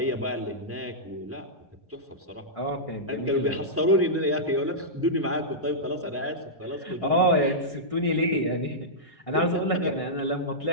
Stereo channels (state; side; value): normal; both; correlation -0.13